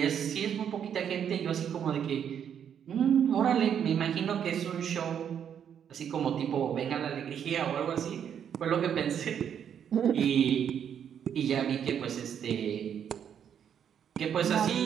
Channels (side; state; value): left; quieter; 8.6 dB